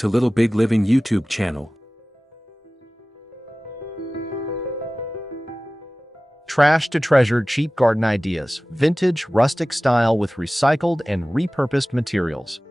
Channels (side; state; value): both; normal; correlation 0.97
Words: Little Big Living YouTube channel. Trash to treasure cheap garden ideas, vintage rustic style with recycled and repurposed materials.